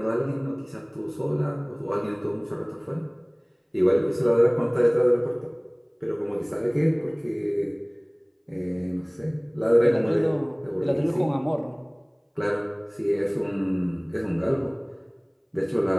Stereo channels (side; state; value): both; identical; correlation 1.00